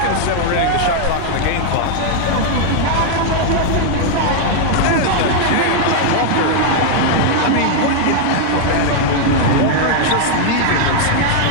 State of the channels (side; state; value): both; different; correlation 0.00